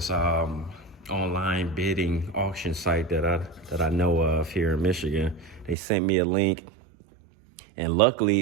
online bidding auction site that I know of here in Michigan, they sent me a link, and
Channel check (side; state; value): left; drops out; at 5.8 s